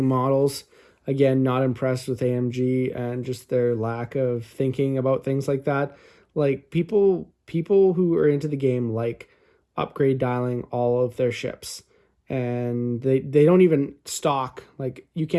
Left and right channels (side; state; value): both; identical; correlation 1.00